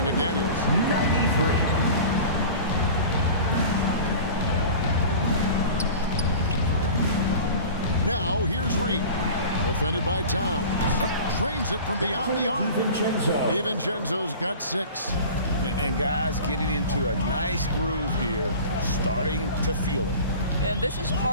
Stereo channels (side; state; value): both; inverted; correlation -0.38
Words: McDaniels. 93. Now here's Reed. Defended by Towns. Trains it from beyond the arc. DiVincenzo's got 6. And guys getting into a nice groove here, starting to feel it. And this is